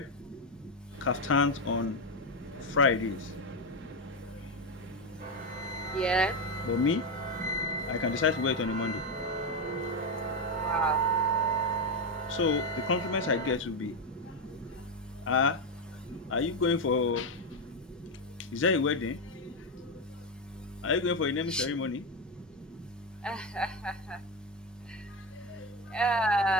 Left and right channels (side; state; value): both; normal; correlation 0.10